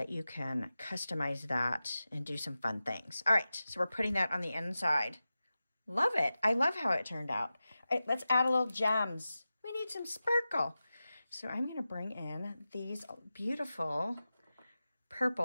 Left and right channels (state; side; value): inverted; both; correlation -0.94